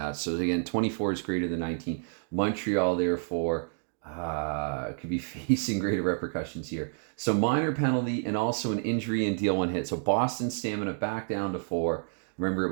So again, 24 is greater than 19. Montreal, therefore, could be facing greater repercussions here. So minor penalty and also an injury and deal 1 hit. So Boston stamina back down to 4. Remember, it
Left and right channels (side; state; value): left; silent; digital silence